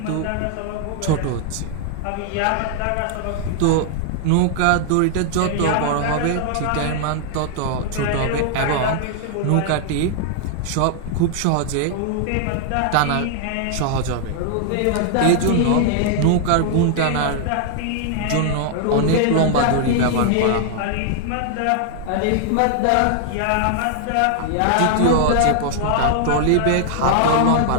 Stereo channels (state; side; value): different; both; correlation 0.00